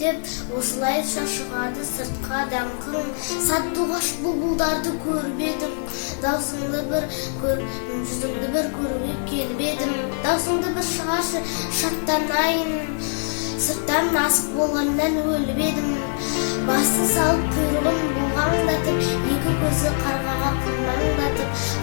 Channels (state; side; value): silent; right; digital silence